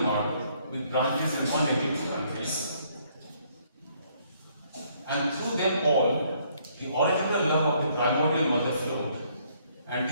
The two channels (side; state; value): both; inverted; correlation -0.67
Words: with branches in 182 countries. And through them all, the original love of the primordial mother flowed, and